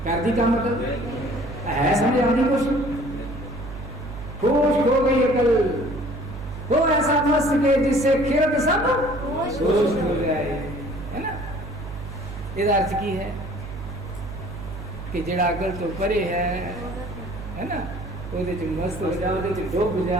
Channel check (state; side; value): noise; right; hum, 10 dB below the sound